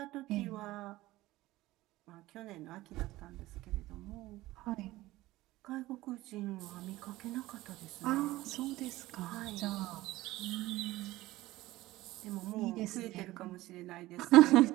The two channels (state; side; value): quieter; left; 17.5 dB